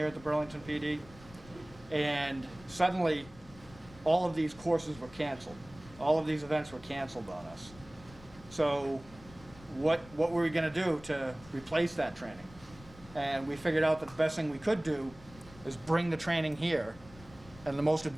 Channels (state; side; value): noise; left; rumble, 20 dB below the sound